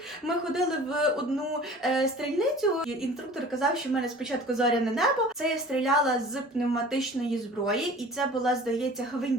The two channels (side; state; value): both; normal; correlation 0.44